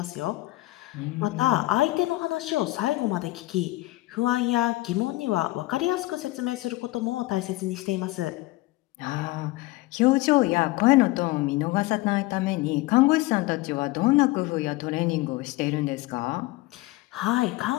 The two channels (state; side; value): quieter; right; 19.5 dB